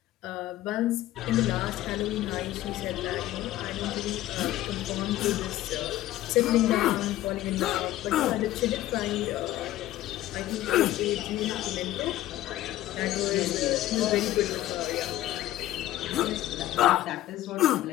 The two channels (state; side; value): quieter; right; 14.6 dB